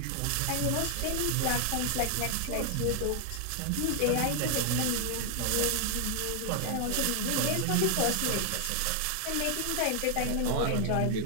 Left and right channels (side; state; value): both; different; correlation 0.00